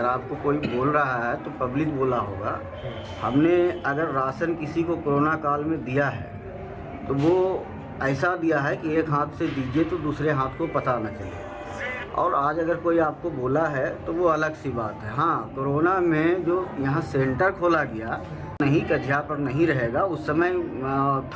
आपको कोई बोल रहा है तो पब्लिक बोला होगा। हमने अगर राशन किसी को कोरोना काल में दिया है तो वो ऐसा दिया है कि एक हाथ से दीजिए तो दूसरे हाथ को पता न चले। और आज अगर कोई आपको बोला है तो वो अलग सी बात है। हाँ, कोरोना में जो यहाँ सेंटर खोला गया नहीं, कझिया पर नहीं रहेगा, उस समय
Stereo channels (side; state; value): both; identical; correlation 1.00